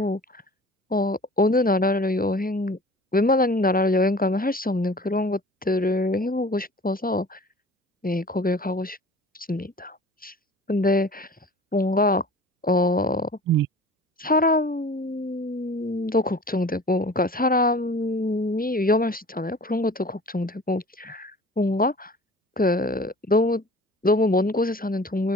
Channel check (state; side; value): normal; both; correlation 0.44